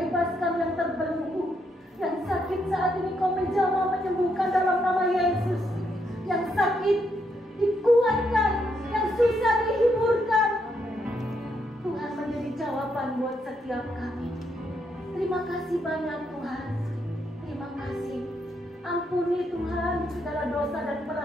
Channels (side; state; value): both; normal; correlation 0.77